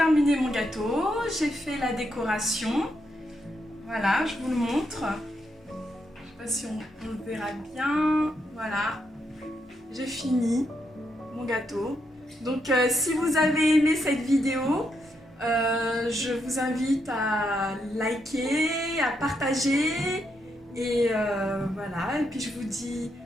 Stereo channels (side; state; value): both; normal; correlation 0.80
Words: mon gâteau, j'ai fait la décoration. Voilà, je vous le montre. Je sais pas si on le verra bien. Voilà, j'ai fini mon gâteau. Donc si vous avez aimé cette vidéo, je vous invite à liker, à partager et voilà. Et puis je vous dis